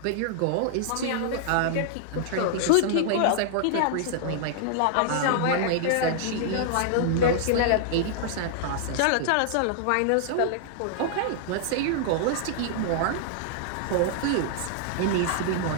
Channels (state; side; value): different; both; correlation -0.01